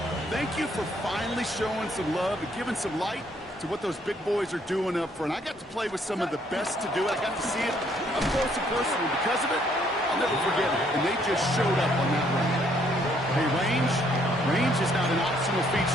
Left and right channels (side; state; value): both; normal; correlation 0.67